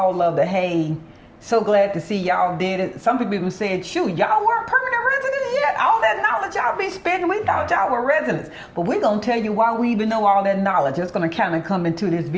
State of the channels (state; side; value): identical; both; correlation 1.00